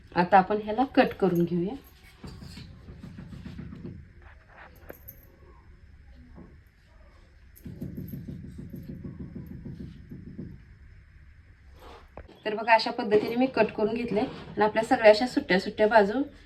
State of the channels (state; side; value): identical; both; correlation 1.00